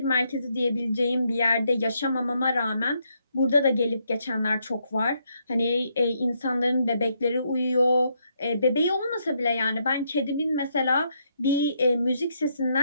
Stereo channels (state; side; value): inverted; both; correlation -0.76